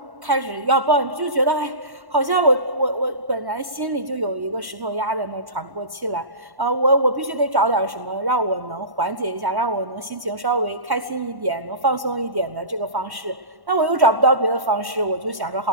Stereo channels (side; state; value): left; late; 1.1 ms